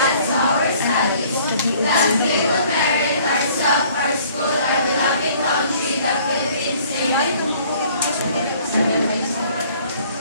to our studies. That we will merit ourselves, our school, our beloved country, the Philippines. Amen.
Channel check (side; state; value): both; inverted; correlation -0.56